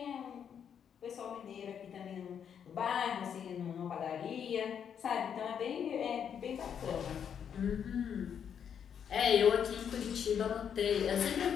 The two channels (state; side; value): quieter; right; 8.0 dB